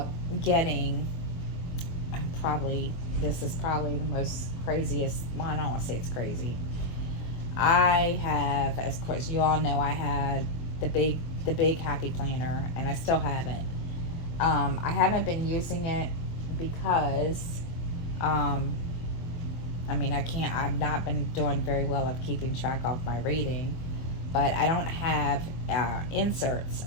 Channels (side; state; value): right; late; 24 ms